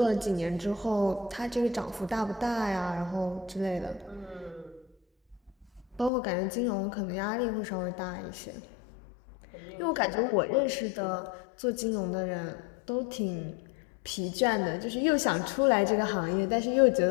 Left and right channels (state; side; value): drops out; right; at 6.1 s